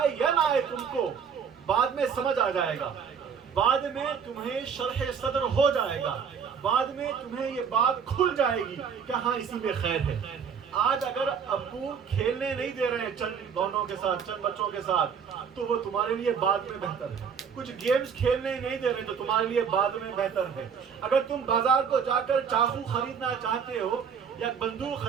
یا نہ آئے تم کو بعد میں سمجھ آ جائے گا, بعد میں تمہیں شرح صدر ہو جائے گا, بعد میں تمہیں یہ بات کھل جائے گی کہ ہاں اسی میں خیر ہے. آج اگر ابو کھیلنے نہیں دے رہے ہیں چند دونوں کے ساتھ, چند بچوں کے ساتھ, تو وہ تمہارے لیے بعد میں بہتر ہے. کچھ گیمز کھیلنے نہیں دے رہے تو تمہارے لیے بعد میں بہتر ہے. اگر تم بازار کو جا کر چاقو خریدنا چاہتے ہو یا بندوق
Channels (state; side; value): quieter; left; 6.8 dB